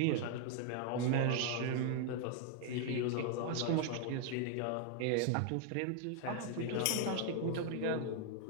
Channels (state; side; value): different; both; correlation 0.00